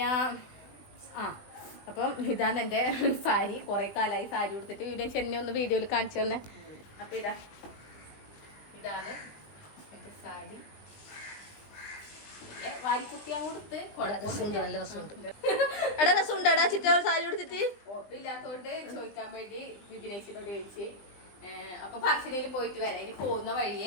അപ്പം ഇതാണ് എൻ്റെ സാരി. കുറേ കാലമായി സാരി കൊടുത്തിട്ട്. വിപിനേച്ചി എന്നെ ഒന്ന് വീഡിയോയിൽ കാണിച്ചു തന്നെ. അപ്പം ഇതാണ് എൻ്റെ സാരി. വാരിക്കുത്തിയാൻ കൊടുത്ത് നല്ല രസമുണ്ട്. എടാ രസമുണ്ട് എടാ ചിറ്റ സാരി കൊടുത്തിട്ട്. ഉറപ്പില്ലാത്തോണ്ട് ചോദിക്കാൻ വേണ്ടി വിപിനേച്ചിനോട് ചോദിച്ച്. അപ്പൊ പറശ്ശിനിയിൽ പോയിട്ട് വരാം. ഇനി പോകുന്ന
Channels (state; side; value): late; right; 20 ms